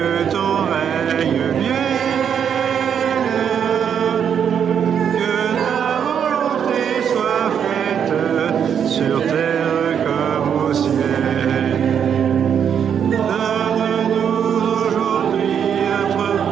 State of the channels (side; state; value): left; quieter; 8.1 dB